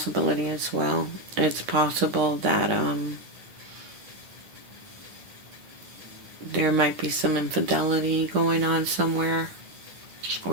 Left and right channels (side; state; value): left; late; 10 ms